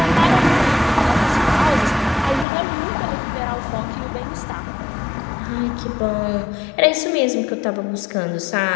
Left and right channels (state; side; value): drops out; right; at 2.5 s